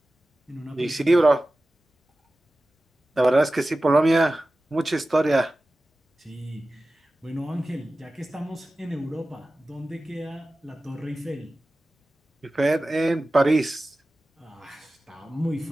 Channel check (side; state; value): both; normal; correlation 0.95